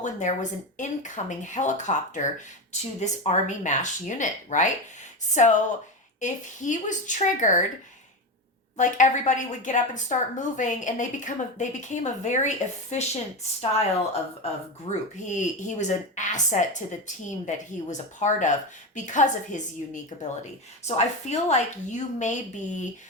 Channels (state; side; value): normal; both; correlation 0.18